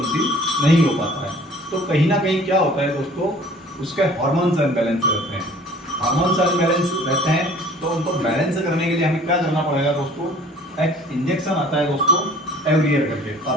नहीं हो पाता है। तो कहीं ना कहीं क्या होता है दोस्तों, उसके हार्मोन्स अनबैलेंस रहते हैं। हार्मोन्स अनबैलेंस रहते हैं तो उनको बैलेंस करने के लिए हमें क्या करना पड़ेगा दोस्तों, एक इंजेक्शन आता है दोस्तों एवरियर करके।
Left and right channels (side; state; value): both; normal; correlation 0.51